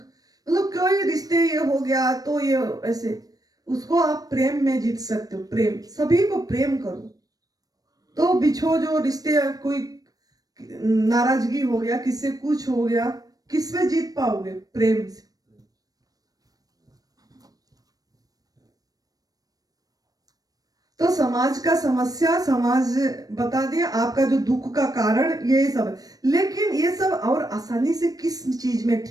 मतलब कोई रिश्ते ये हो गया तो ये ऐसे, उसको आप प्रेम में जीत सकते हो। प्रेम, सभी को प्रेम करो। तो बिछो जो रिश्ते, कोई नाराजगी हो गया, किससे कुछ हो गया, किस में जीत पाओगे? प्रेम से। तो समाज का समस्या समाज बता दिया, आपका जो दुख का कारण ये सब है। लेकिन ये सब और आसानी से किस चीज में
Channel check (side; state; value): left; late; 0.18 ms